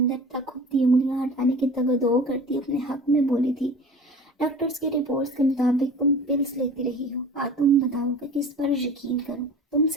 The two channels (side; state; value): both; normal; correlation 0.39